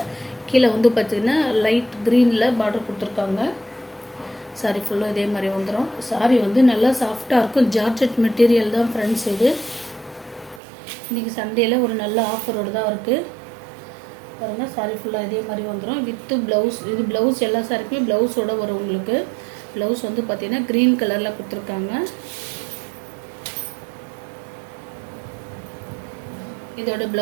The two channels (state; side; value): drops out; left; at 10.6 s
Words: கீழே வந்து பார்த்திங்கன்னா லைட் க்ரீனில் பார்டர் கொடுத்துருக்காங்க. சாரீ ஃபுல்லாக இதே மாதிரி வந்துடும். சாரீ வந்து நல்லா சாஃப்டாக இருக்கும். ஜார்ஜெட் மெட்டீரியல் தான் ஃப்ரெண்ட்ஸ். இது இன்றைக்கி சண்டேயில் ஒரு நல்ல ஆஃபரோடு தான் இருக்குது பாருங்கள். சாரீ ஃபுல்லாக இதே மாதிரி வந்துடும் வித்து ப்ளவுஸ். இது ப்ளவுஸ் எல்லா சாரிக்குமே ப்ளவுஸோடு வரும் உங்களுக்கு. ப்ளவுஸ் வந்து பார்த்திங்கன்னா க்ரீன் கலரில் கொடுத்துருக்காங்க. இதோட